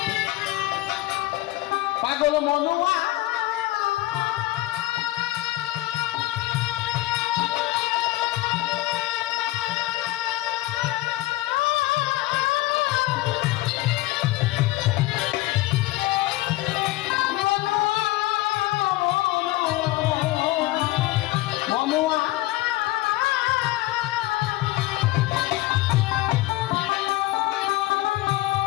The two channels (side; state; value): right; quieter; 17.8 dB